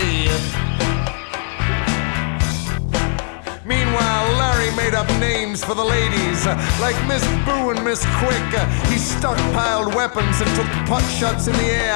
Meanwhile, Larry made up names for the ladies, like Miss Boo and Miss Quick. He stockpiled weapons and took pot shots in the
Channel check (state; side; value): silent; right; digital silence